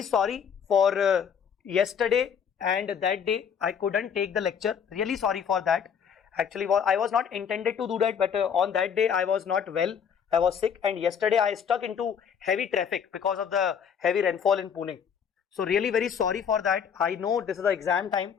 sorry for yesterday and that day I couldn't take the lecture. Really sorry for that. Actually, I was not intended to do that, but on that day I was not well. I was sick, and yesterday I stuck into heavy traffic because of the heavy rainfall in Pune. So really very sorry for that. I know this is the exam time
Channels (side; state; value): right; quieter; 7.4 dB